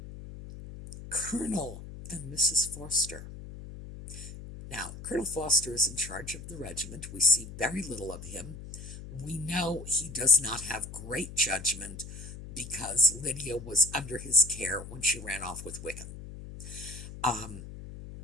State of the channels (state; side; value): noise; left; hum, 12 dB below the sound